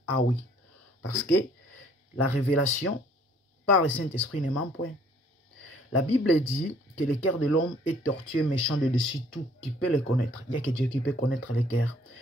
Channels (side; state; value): both; normal; correlation 0.59